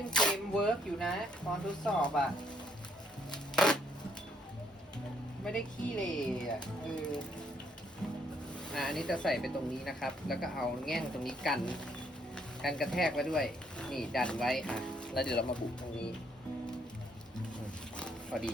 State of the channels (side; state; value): both; normal; correlation 0.69